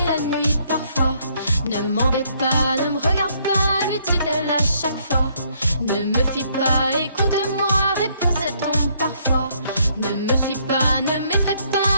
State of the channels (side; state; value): both; inverted; correlation -0.68